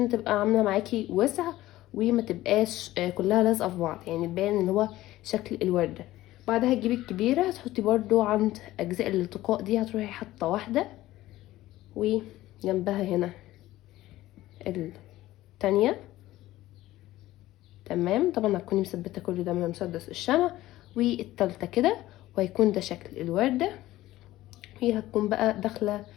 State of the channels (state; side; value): quieter; right; 16.0 dB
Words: تبقى عامله معاكي وسع وما تبقاش كلها لازقه في بعض، يعني تبان اللي هو شكل الورده. بعدها تجيبي الكبيره هتحطي برضو عند اجزاء الالتقاء دي، هتروحي حاطه واحده، وجنبها هنا التانية، تمام. طبعا هتكوني مثبته كل ده من مسدس الشمع، والتالتة كده، وهيكون ده شكل الوردة. هي هتكون بقى داخله